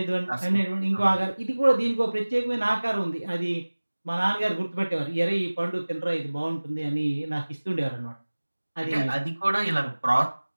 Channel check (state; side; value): inverted; both; correlation -1.00